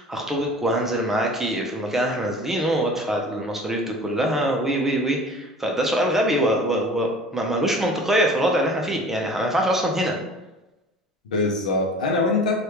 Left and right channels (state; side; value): normal; both; correlation 0.43